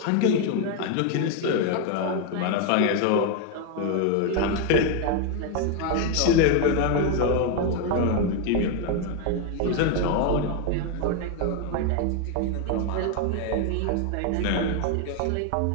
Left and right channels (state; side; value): different; both; correlation 0.01